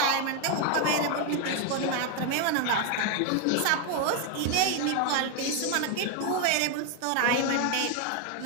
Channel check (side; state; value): both; different; correlation 0.01